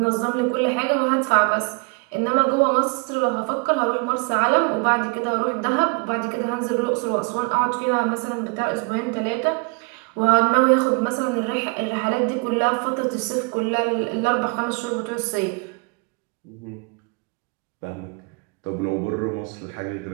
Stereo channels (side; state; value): left; quieter; 31.6 dB